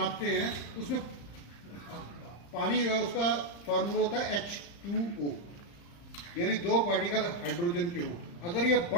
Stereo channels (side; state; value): right; late; 35 ms